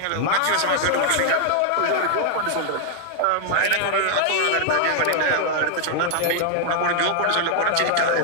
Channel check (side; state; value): both; different; correlation 0.00